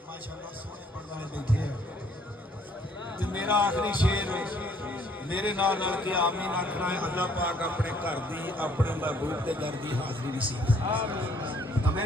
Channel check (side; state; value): both; normal; correlation 0.63